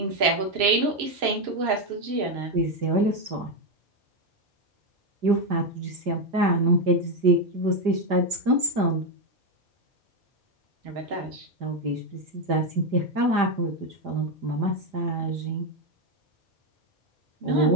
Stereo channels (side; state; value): left; late; 5.0 ms